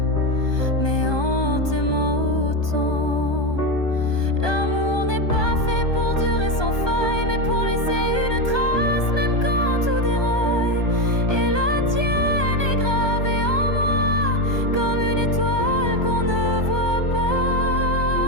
mais en t'aimant autant. L'amour n'est pas fait pour durer sans faille, mais pour laisser une trace, même quand tout déraille. Et la tienne est gravée en moi, comme une étoile qu'on ne voit pas,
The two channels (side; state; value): right; late; 1.2 ms